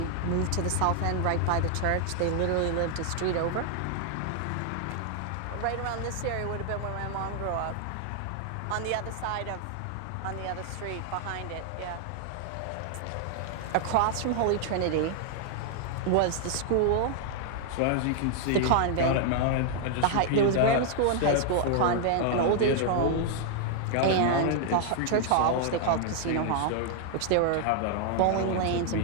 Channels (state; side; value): different; both; correlation 0.00